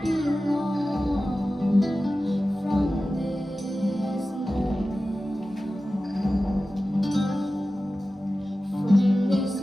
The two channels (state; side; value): normal; both; correlation 0.95